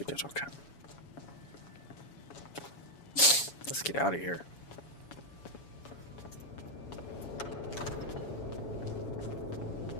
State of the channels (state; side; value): late; right; 7.1 ms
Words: did okay. Let's get out of here.